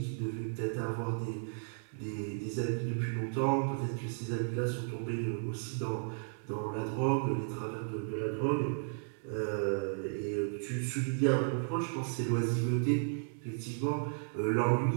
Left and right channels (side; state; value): left; silent; 55 dB below the other